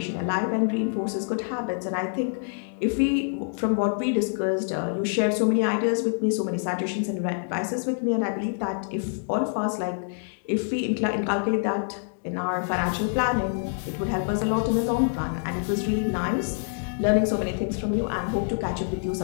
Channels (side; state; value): right; silent; digital silence